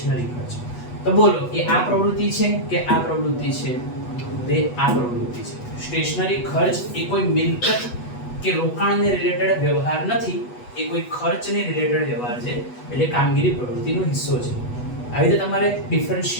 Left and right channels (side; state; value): right; late; 8.1 ms